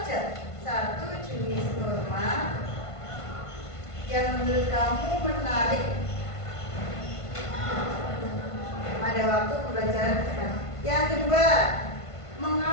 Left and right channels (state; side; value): late; right; 1.5 ms